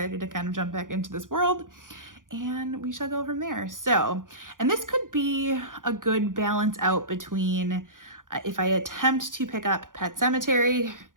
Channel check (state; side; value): late; left; 0.89 ms